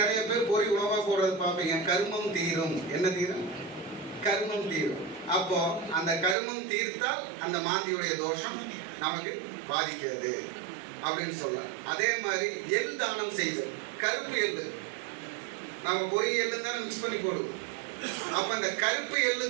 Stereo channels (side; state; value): left; drops out; at 6.4 s